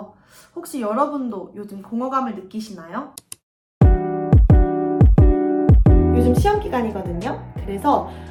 혹시 여러분도 요즘 공허감을 느끼시나요? 요즘 시험 기간이거든요. 그래서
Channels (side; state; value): both; identical; correlation 1.00